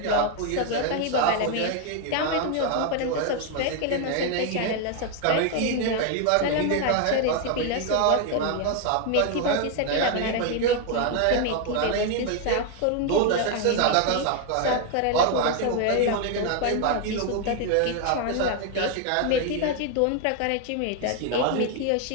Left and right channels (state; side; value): different; both; correlation 0.01